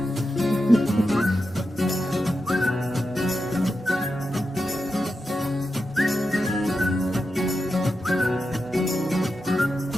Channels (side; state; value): both; normal; correlation 0.89